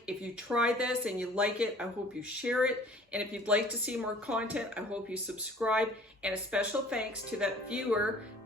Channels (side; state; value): both; normal; correlation 0.51